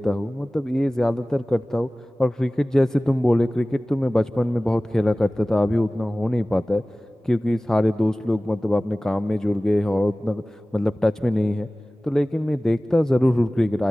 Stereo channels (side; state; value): both; normal; correlation 0.98